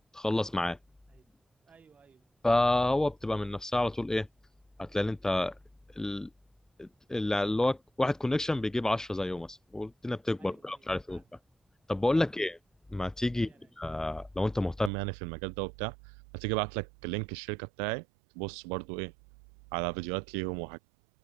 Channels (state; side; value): drops out; left; at 14.9 s